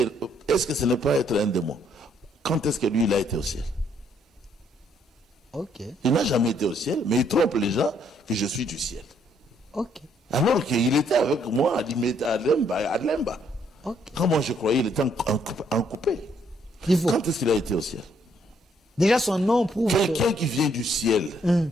Est-ce que ce n'est pas être un démon? Quand est-ce que lui, il a été au ciel? Ok. Il n'a jamais été au ciel, mais il trompe les gens que je suis du ciel. Ok. Alors qu'il était avec moi à Lemba. Ok. Quand moi je croyais qu'il était en coupé. Il faut. Quand est-ce qu'il a été au ciel? Déjà, son nom prouve que... Quelqu'un qui vient du ciel,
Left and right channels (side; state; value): both; normal; correlation 0.69